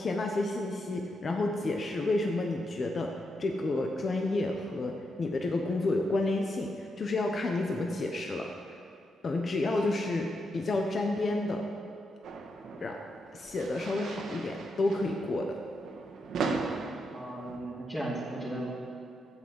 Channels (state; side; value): normal; both; correlation 0.83